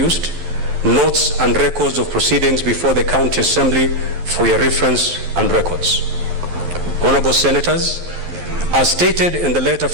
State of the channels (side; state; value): left; late; 11 ms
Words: notes and records of proceedings before the County Assembly for your reference and records. Honorable Senators, as stated in the letter